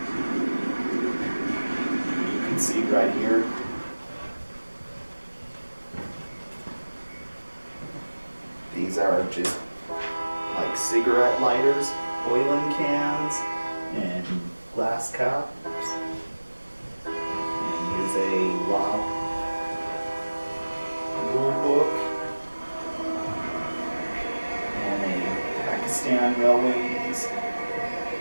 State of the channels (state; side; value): inverted; both; correlation -1.00